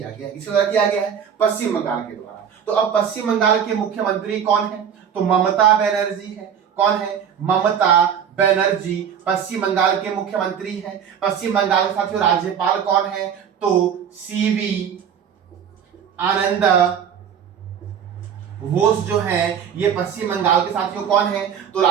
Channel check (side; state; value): left; quieter; 8.0 dB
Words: गया है। किसके द्वारा किया गया है? पश्चिम बंगाल के द्वारा। तो अब पश्चिम बंगाल के मुख्यमंत्री कौन है? तो ममता बनर्जी है। कौन है? ममता बनर्जी पश्चिम बंगाल के मुख्यमंत्री हैं। पश्चिम बंगाल के साथियों राज्यपाल कौन है? तो सीवी आनंद बोस जो है ये पश्चिम बंगाल के साथियों कौन है? तो